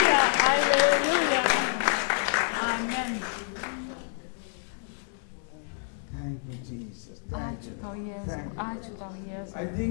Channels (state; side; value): silent; right; 59 dB below the other